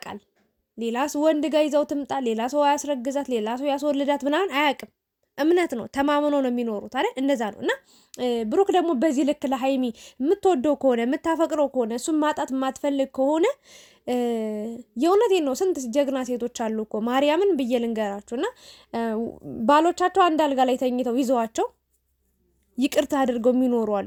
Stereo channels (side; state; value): both; identical; correlation 1.00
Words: ሌላ ወንድ ጋር ይዘው ትምጣ፣ ሌላ ሰው ያስረግዛት፣ ሌላ ሰው ያስወልዳት ምናምን አያውቅም። እምነት ነው፣ ተማምኖ ነው የሚኖሩት አይደል? እንደዛ ነው። እና ብሩክ ደግሞ በዚህ ልክ ለሀይሚ የምትወደው ከሆነ የምታፈቅረው ከሆነ እሱን ማጣት የማትፈልግ ከሆነ የእውነቴን ነው። ስንት ጀግና ሴቶች አሉ እኮ ማርያምን ብዬ ልንገራችሁ። እና ባሎቻቸው አንድ አልጋ ላይ ተኝተው ይዘዋቸው ይቅርታ አድርገው የሚኖሩ